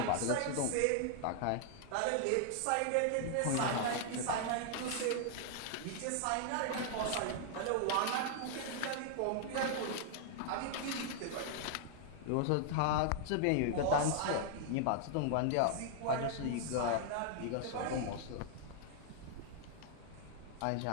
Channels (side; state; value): both; different; correlation 0.00